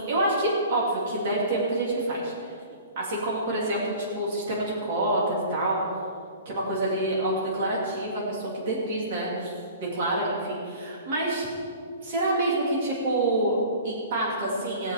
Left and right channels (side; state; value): both; inverted; correlation -0.43